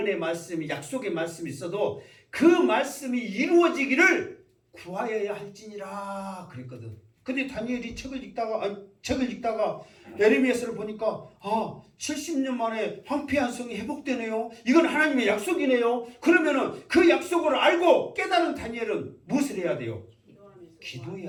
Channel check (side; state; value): both; identical; correlation 1.00